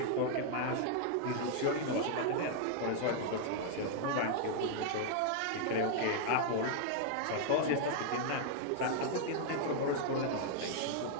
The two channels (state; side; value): different; both; correlation 0.00